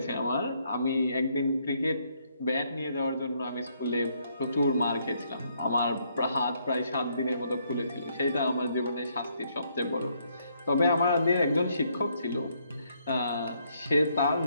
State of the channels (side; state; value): both; inverted; correlation -0.71